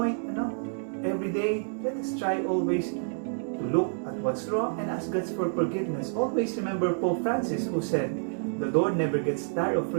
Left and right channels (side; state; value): left; silent; digital silence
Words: every day, let us try always to look at what's wrong and ask God for forgiveness. Always remember Pope Francis who said, the Lord never gets tired of